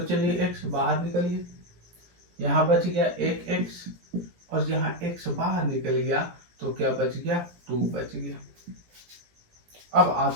x बाहर निकलिए, यहाँ बच गया एक x, और यहाँ x बाहर निकल गया तो क्या बच गया 2 बच गया। अब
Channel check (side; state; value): left; late; 17 ms